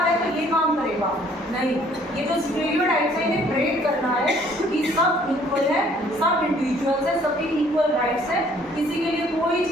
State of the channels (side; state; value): both; normal; correlation 0.59